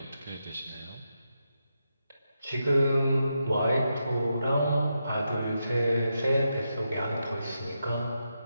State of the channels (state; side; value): inverted; both; correlation -0.85